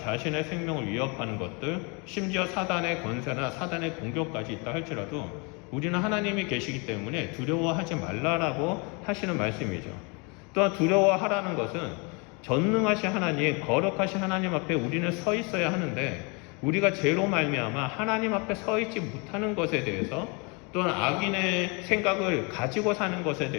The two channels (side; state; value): right; quieter; 31.5 dB